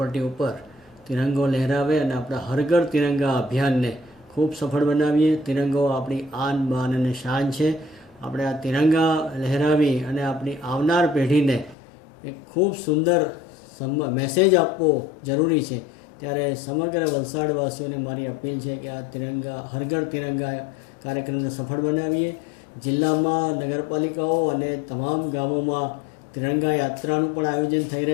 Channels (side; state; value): right; drops out; at 11.8 s